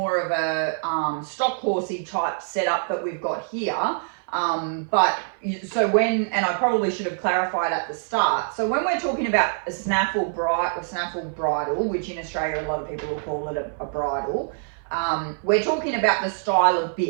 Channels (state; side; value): silent; left; 58 dB below the other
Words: of a stock horsey type setup that we've got here. So when, and I probably should have clarified at the start, so when we're talking about a snaffle bridle, which in Australia a lot of people will call it a bridle, we're talking about the style of